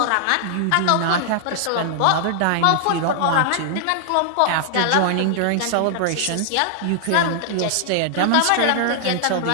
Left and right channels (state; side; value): different; both; correlation -0.01